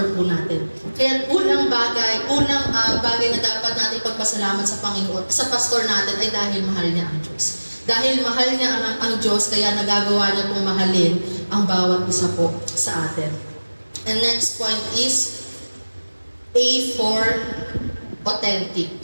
po natin. Kaya unang bagay na dapat natin pagpasalamat sa Panginoon, sa pastor natin ay dahil mahal niya ang Diyos. Dahil mahal niya ang Diyos, kaya nagagawa niya pong mahalin ang bawat isa po sa atin. And next point is A for authentic.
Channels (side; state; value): both; inverted; correlation -1.00